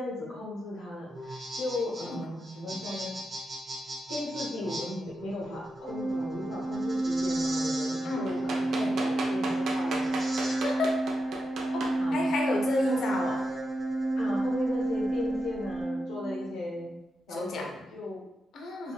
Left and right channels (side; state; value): both; normal; correlation 0.88